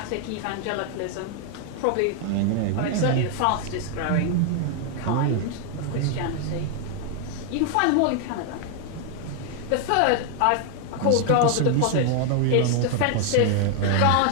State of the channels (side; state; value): both; different; correlation 0.00